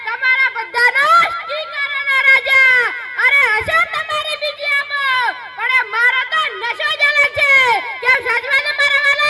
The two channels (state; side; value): identical; both; correlation 1.00